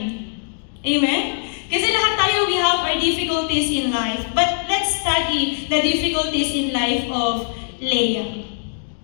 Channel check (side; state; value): right; silent; digital silence